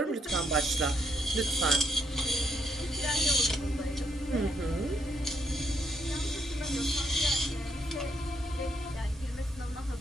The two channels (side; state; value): both; normal; correlation 0.74